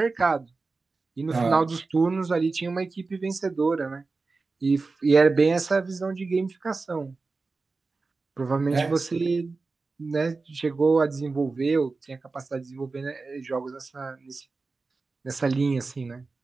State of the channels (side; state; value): left; quieter; 3.9 dB